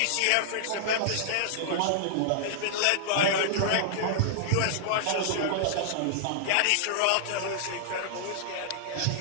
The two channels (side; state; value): both; different; correlation -0.01